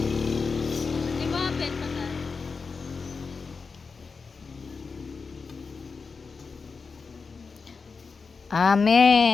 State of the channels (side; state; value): right; quieter; 4.8 dB